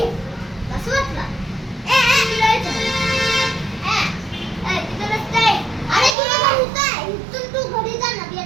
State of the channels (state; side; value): drops out; left; at 6.2 s